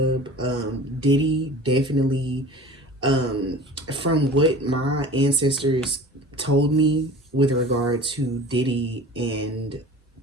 Diddy definitely, from what my ancestors told me with regard to Diddy and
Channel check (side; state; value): both; normal; correlation 0.40